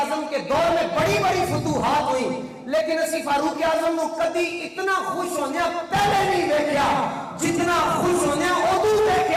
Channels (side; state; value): both; identical; correlation 1.00